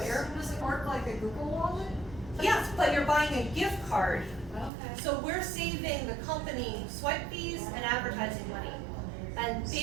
Does it work like a Google Wallet? Yes, but you're buying a gift card. Okay. So we're saving the company swipe fees and advertising money. And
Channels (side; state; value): left; drops out; at 4.7 s